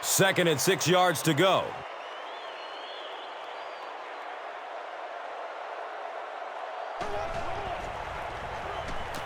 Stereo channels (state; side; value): identical; both; correlation 1.00